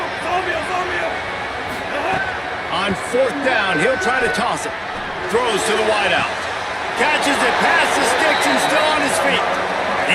On 4th down, he'll try to toss it. Throws to the wideout. Catches it past the sticks and still on his feet.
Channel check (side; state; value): both; identical; correlation 1.00